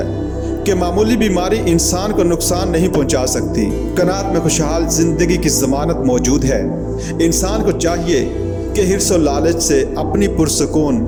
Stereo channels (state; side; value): identical; both; correlation 1.00